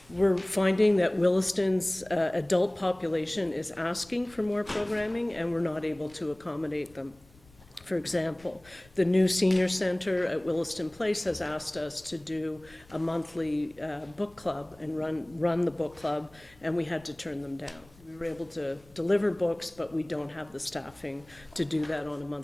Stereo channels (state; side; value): noise; left; rumble, 26 dB below the sound